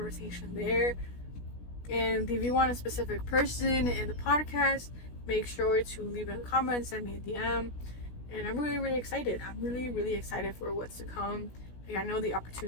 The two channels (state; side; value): late; right; 16 ms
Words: there. And if you want a specific person in the podcast, make sure to leave it in the comments. Send me a DM. And I'm really excited. I'm really excited for what's to come. Like, I know the